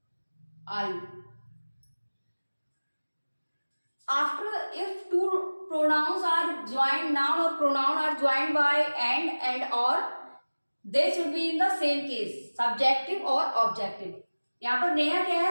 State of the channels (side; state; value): both; inverted; correlation -1.00